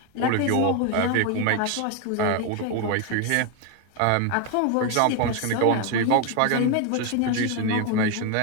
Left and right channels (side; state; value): both; different; correlation 0.01